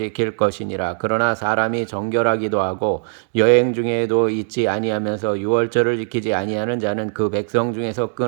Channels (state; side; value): silent; left; digital silence